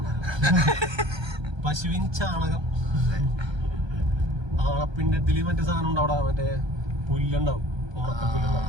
പശുവിൻ ചാണകം. ആണപ്പിണ്ടത്തില് മറ്റേ സാധനം ഉണ്ടാവും, മറ്റേ പുല്ലുണ്ടാവും, ഉണക്കപ്പുല്ലുണ്ടാവും.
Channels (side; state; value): left; late; 1.3 ms